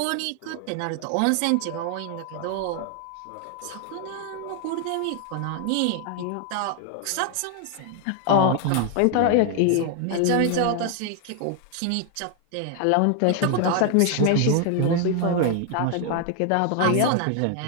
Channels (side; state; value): both; different; correlation 0.00